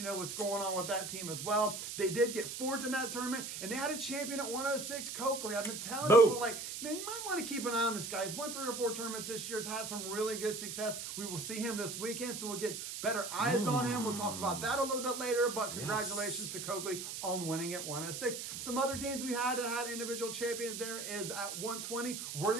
know what's going on with that team as well. They did get fourth in that tournament, and they had a champion at 106, Coakley. I've been telling people, like, man, you might want to keep an eye on this guy. He's won 3 or 4 tournaments this year. Has had some really good success. We will see him this weekend, so we'll get better eyes on him. We'll talk about that a little bit later, but congratulations to Coakley on winning at 106. Some other teams we had that had individual champions there is at 120,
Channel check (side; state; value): right; noise; hiss, 6 dB below the sound